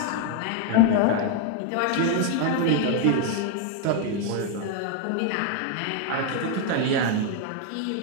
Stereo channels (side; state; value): both; different; correlation 0.00